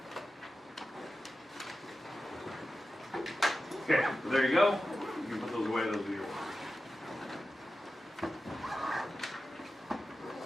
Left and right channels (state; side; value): normal; both; correlation 0.93